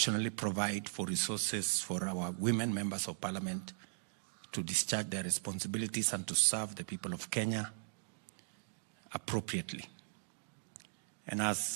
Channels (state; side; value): silent; left; digital silence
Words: provide for resources for our women members of Parliament to discharge their responsibilities and to serve the people of Kenya appropriately. And